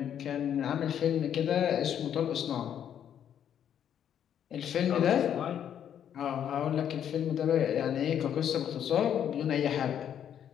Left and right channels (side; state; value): right; quieter; 9.4 dB